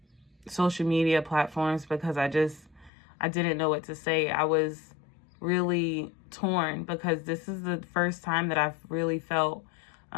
social media platforms because I didn't know what to say. I was really torn because this is the first time that I've really felt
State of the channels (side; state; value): right; drops out; at 2.9 s